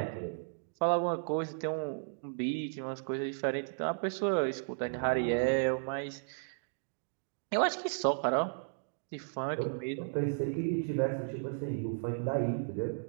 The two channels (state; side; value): silent; left; digital silence